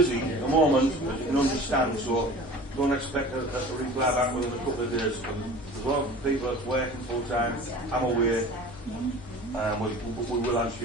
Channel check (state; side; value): normal; both; correlation 0.40